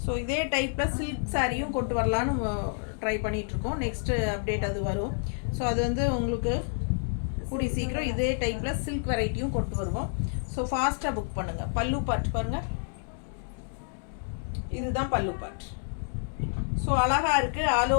ஸோ இதே டைப்பில் சில்க் சாரியும் கொண்டு வரலான்னு ட்ரை பண்ணிகிட்ருக்கோம். நெக்ஸ்ட்டு அப்டேட் அது வரும். ஸோ அது வந்து உங்களுக்கு கூடி சீக்கிரம் இதே டைப்பில் சில்க் வெரைட்டியும் கொண்டு வருவோம். ஸோ ஃபாஸ்ட்டாக புக் பண்ணுங்கள். பல்லு பார்ட் பாருங்கள், இதுதான் பல்லு பார்ட். ஸோ அழகாக இருக்குது. ஆல்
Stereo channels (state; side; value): silent; right; 59 dB below the other